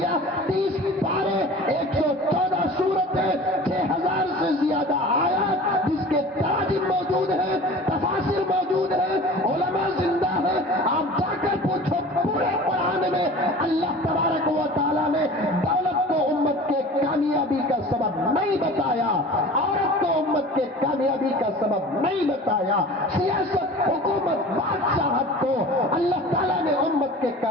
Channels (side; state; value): both; normal; correlation 0.40